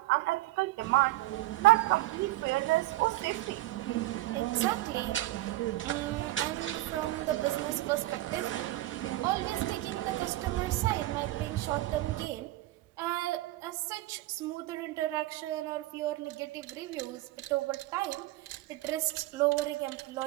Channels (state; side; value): quieter; left; 17.4 dB